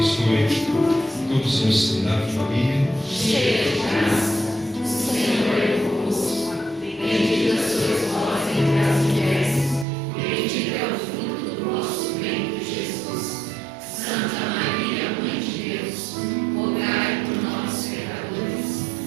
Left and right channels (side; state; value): left; drops out; at 9.9 s